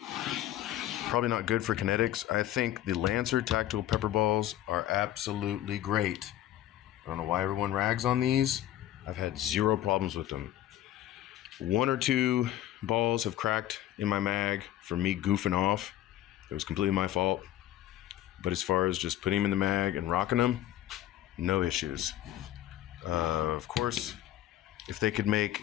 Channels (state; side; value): quieter; right; 12.9 dB